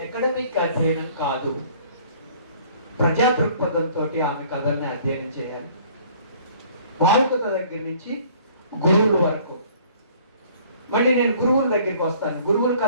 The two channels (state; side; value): inverted; both; correlation -0.55